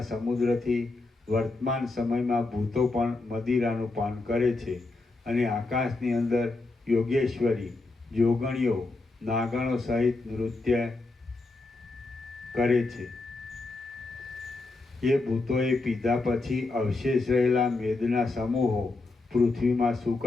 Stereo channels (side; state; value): right; quieter; 3.3 dB